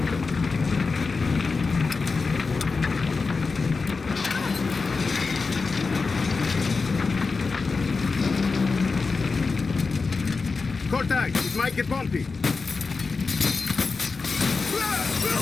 Cortez, it might get bumpy.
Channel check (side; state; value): right; quieter; 4.4 dB